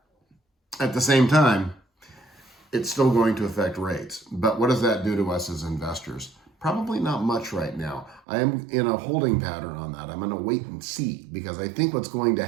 at the same time, it's still going to affect rates. But what does that do to us as investors? Probably not much right now. I am in a holding pattern on that. I'm going to wait and see, because I think what's going to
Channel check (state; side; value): drops out; left; at 8.2 s